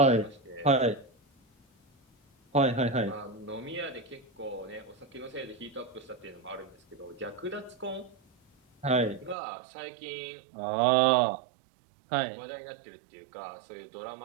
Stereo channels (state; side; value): drops out; left; at 9.3 s